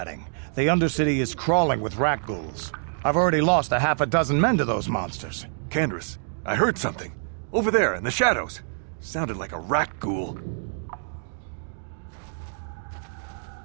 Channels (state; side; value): silent; left; digital silence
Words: The Undercity is crawling with rat ghouls. I've already lost a half a dozen men to those monsters. Candace, I heard something. Over there, in the shadows. Sounded like a rat ghoul.